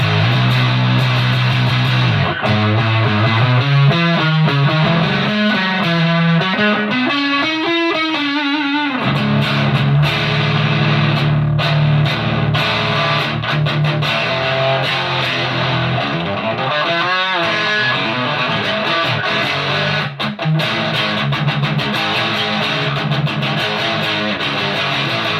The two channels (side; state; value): both; identical; correlation 1.00